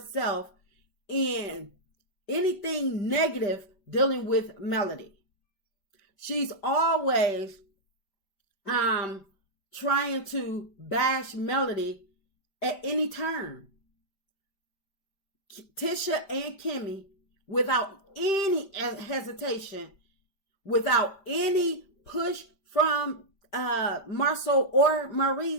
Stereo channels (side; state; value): right; late; 5.1 ms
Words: in anything negative dealing with Melody. She's always trying to bash Melody at any turn. Tisha and KIMMIE, without any hesitation, without any push from Marcel or